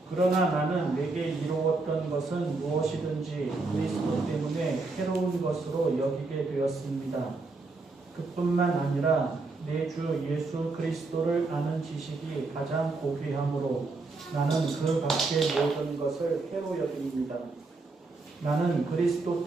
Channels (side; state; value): left; quieter; 3.6 dB